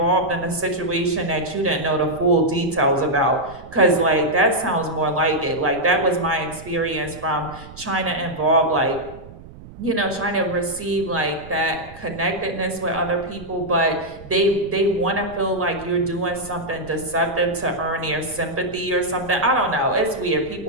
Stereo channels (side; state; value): right; noise; rumble, 18 dB below the sound